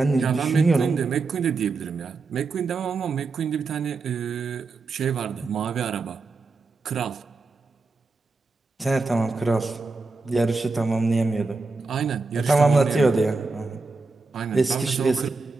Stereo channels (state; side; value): quieter; left; 3.8 dB